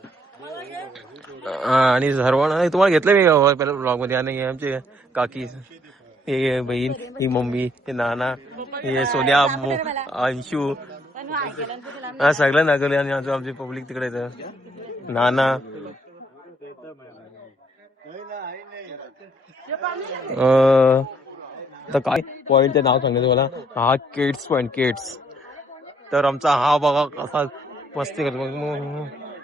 आणि सर्वांना तुम्हाला घेतलं मी पहिल्या ब्लॉग मध्ये. आणि आमचे काकी, हे बहीण, ही मम्मी, हे नाना, हे सोन्या, अंशू, हा सगळं नागवले. आणि आमची पब्लिक तिकडे येतं. नाना, तर काय पॉइंटचं नाव सांगायचं मला. हा केट्स पॉइंट, केट्स. तर आमचा हा बघा कसा मस्ती करतो.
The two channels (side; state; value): both; normal; correlation 0.68